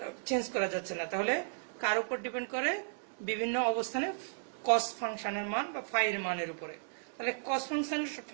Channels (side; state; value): left; silent; digital silence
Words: চেঞ্জ করা যাচ্ছে না। তাহলে কার উপর ডিপেন্ড করে? বিভিন্ন অবস্থানে কস ফাংশনের মান বা ফাই এর মানের উপরে। তাহলে কস